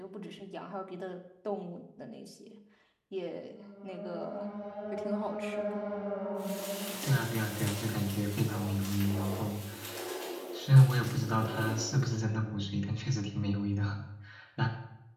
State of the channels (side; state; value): both; identical; correlation 1.00